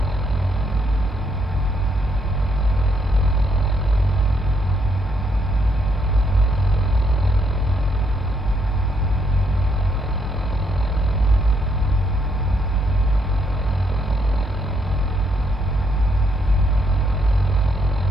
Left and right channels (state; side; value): normal; both; correlation 0.73